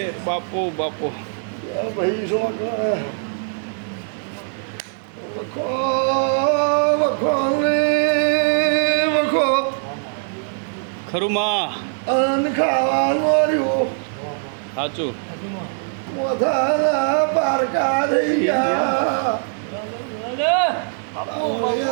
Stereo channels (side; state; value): left; silent; 63 dB below the other